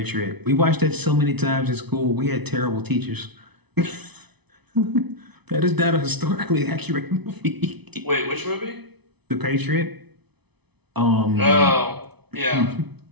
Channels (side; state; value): left; late; 0.99 ms